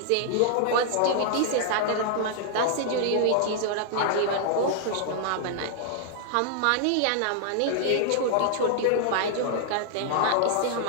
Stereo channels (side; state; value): both; different; correlation -0.01